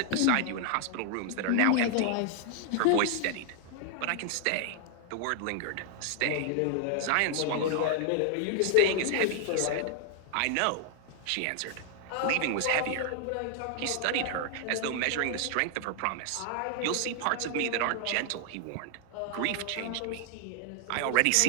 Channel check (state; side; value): different; both; correlation 0.00